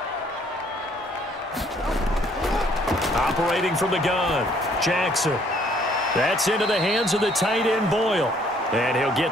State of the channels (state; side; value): normal; both; correlation 0.63